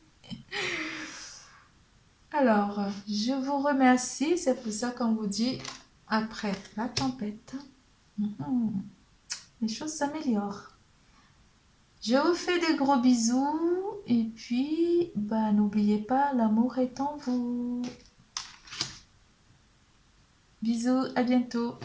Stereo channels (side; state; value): both; identical; correlation 1.00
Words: Alors, je vous remercie. C'est pour ça qu'on vous dit, après la tempête, les choses s'améliorent. Je vous fais des gros bisous et puis n'oubliez pas, l'amour est en vous. Bisous, à bientôt.